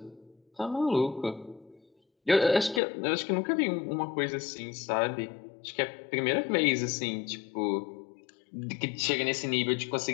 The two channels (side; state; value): right; drops out; at 2.8 s